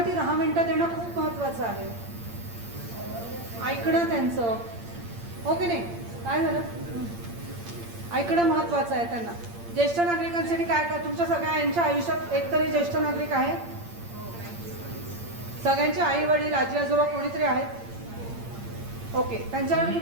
ती 10 मिनिटं देणं खूप महत्त्वाचं आहे. ऐकणं त्यांचं, हो की नाही, काय झालं, ऐकणं महत्त्वाचं आहे त्यांना. ज्येष्ठ नागरिकांसाठी काय काय, तुमच्या सगळ्यांच्या आयुष्यात एकतरी ज्येष्ठ नागरिक आहे, सगळ्यांचे आई वडील, आजी आजोबा कोणीतरी आहेत. ओके, त्यांच्यावर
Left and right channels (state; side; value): late; left; 8.7 ms